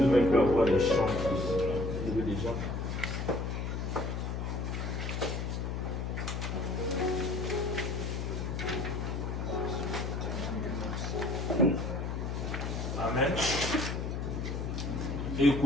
même plus avoir des champs plus. On devait déjà. Amen.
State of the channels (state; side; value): noise; left; hum, 2 dB below the sound